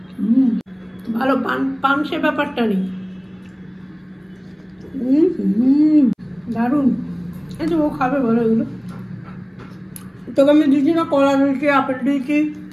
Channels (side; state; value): both; identical; correlation 1.00